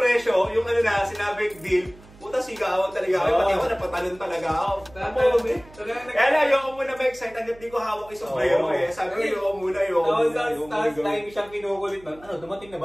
yung sinabing deal, puta sigawan talaga ako. Pati ako napatalon talaga ako. Kaya na, ayoko muna ma-excite hanggat di ko hawak yung sombrero eh. Sabi ko, ayoko muna. Tapos time siyang kinukulit na, dumating na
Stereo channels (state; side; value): noise; right; hum, 23 dB below the sound